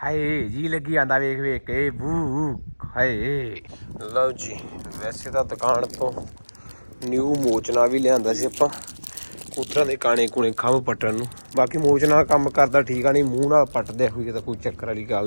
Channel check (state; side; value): inverted; both; correlation -1.00